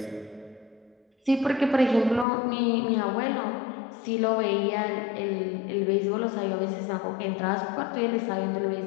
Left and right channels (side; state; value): right; drops out; at 2.2 s